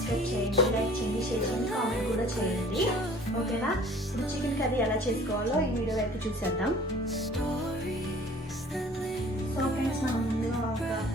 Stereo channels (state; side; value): normal; both; correlation 0.50